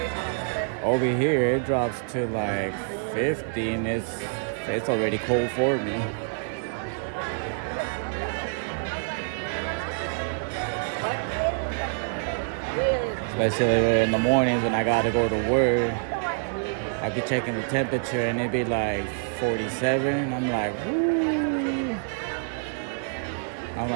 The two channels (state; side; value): silent; left; digital silence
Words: Over here it drops to like 50 and it's already cold for me. Especially in the mornings when I gotta go to work. I be checking the temperature and it be like 47. I'm like, woo. I'm